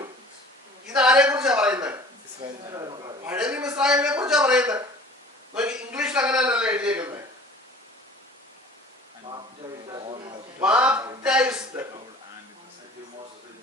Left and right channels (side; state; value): both; normal; correlation 0.46